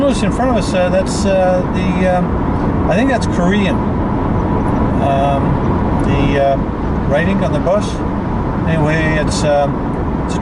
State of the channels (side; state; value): both; identical; correlation 1.00